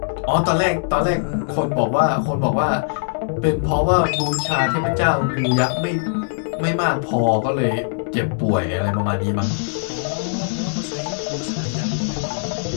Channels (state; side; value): silent; right; digital silence